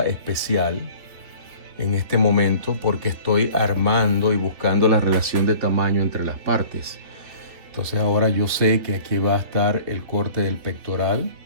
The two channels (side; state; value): left; late; 3.2 ms